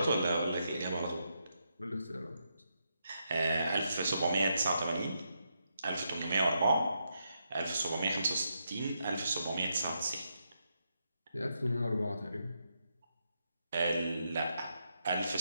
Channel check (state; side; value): inverted; both; correlation -0.81